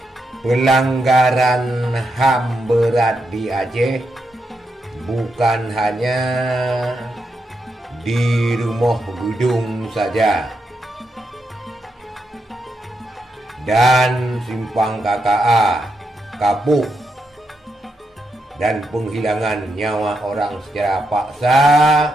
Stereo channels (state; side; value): normal; both; correlation 0.83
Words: Pelanggaran HAM berat di Aceh bukan hanya di Rumah Gudong saja dan Simpang KKA, Kapuk, dan penghilangan nyawa orang secara paksa